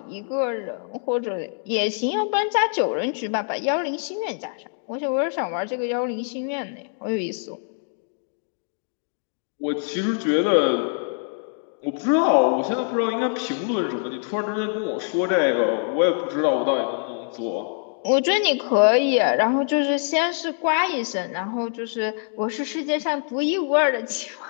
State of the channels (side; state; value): right; silent; 60 dB below the other